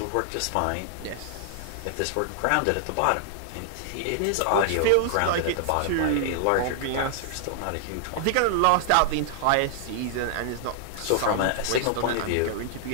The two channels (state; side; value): different; both; correlation -0.01